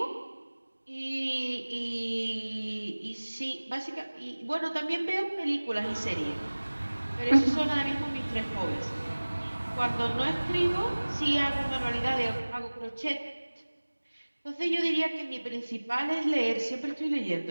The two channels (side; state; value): both; inverted; correlation -1.00